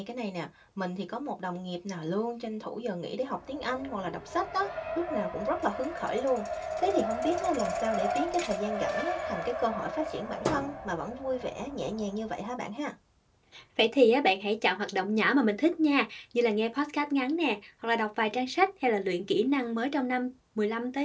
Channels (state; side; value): identical; both; correlation 1.00